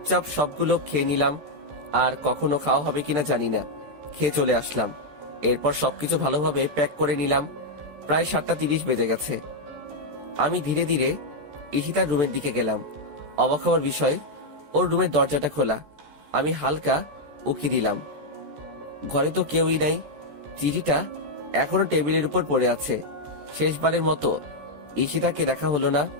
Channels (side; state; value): left; late; 14 ms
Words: সবগুলো খেয়ে নিলাম। আর কখনো খাওয়া হবে কিনা জানি না, খেয়ে চলে আসলাম। এরপর সবকিছু ভালোভাবে প্যাক করে নিলাম। প্রায় 7টা 30 বেজে গেছে। আমি ধীরে ধীরে ঈশিতার রুমের দিকে গেলাম। অবাক হওয়ার বিষয়, ওর রুমের দরজাটা খোলা। আমি হালকা উকি দিলাম, ঘরে তো কেউই নাই। চিঠিটা এখনো টেবিলের উপর পড়ে আছে। শেষবারের মতো ঈশিতাকে দেখা হলো না।